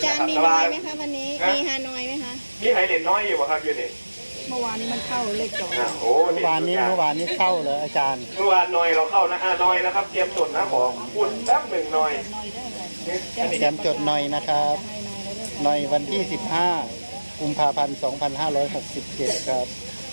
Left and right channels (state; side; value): inverted; both; correlation -1.00